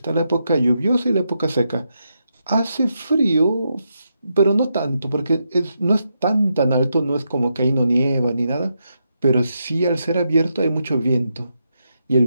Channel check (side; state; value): both; inverted; correlation -0.83